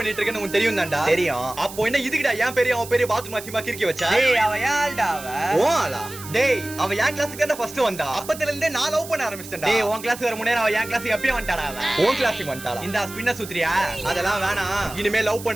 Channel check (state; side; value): noise; right; hiss, 14 dB below the sound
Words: இருக்கேன்னு உனக்கு தெரியும் தான்டா. தெரியும். அப்போ என்ன இதுக்குடா என் பேரு அவன் பேரு பாத்ரூம் அசிமா கிறுக்கி வச்சா? டேய் அவ யாழ்டா அவ? ஓ ஆளா? டேய் அவ என் கிளாஸுக்கு தான் ஃபர்ஸ்ட் வந்தா. அப்பத்துல இருந்தே நான் லவ் பண்ண ஆரம்பிச்சிட்டேன்டா. டேய் உன் கிளாஸ் வர முன்னே அவ என் கிளாஸுக்கு எப்பயும் வந்துட்டாடா அவ. உன் கிளாஸுக்கு வந்துட்டாளா? இந்த ஸ்பின்ன சுத்துறியா? அதெல்லாம் வேணாம். இனிமே லவ்